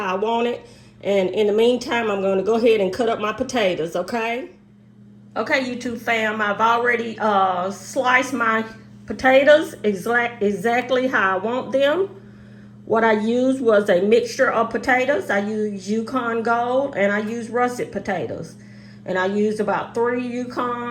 I want it. And in the meantime, I'm going to go ahead and cut up my potatoes, okay? Okay, YouTube fam, I've already sliced my potatoes exactly how I want them. What I used was a mixture of potatoes. I used Yukon Gold and I used russet potatoes. And I used about 3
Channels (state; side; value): identical; both; correlation 1.00